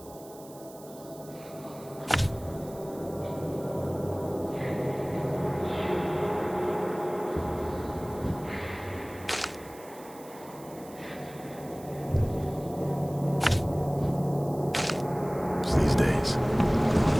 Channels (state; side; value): noise; right; hiss, 21 dB below the sound